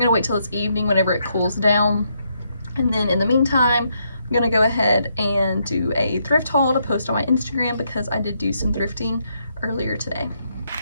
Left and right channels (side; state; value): both; inverted; correlation -0.77